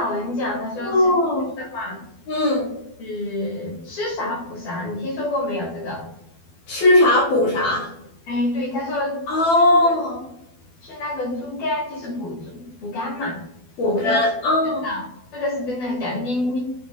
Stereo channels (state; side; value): late; right; 12 ms